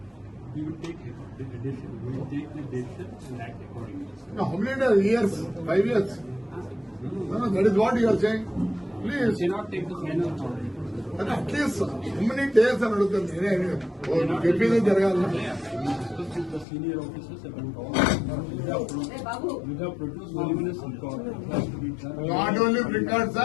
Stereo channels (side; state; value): right; drops out; at 16.7 s